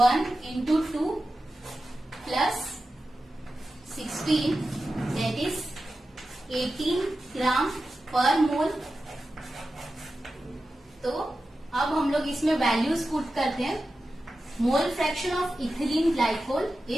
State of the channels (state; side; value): normal; both; correlation 0.93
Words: into 2 plus 16 that is 18 gram per mole. तो अब हम लोग इसमें वैल्यूज पुट करते हैं. Mole fraction of ethylene glycol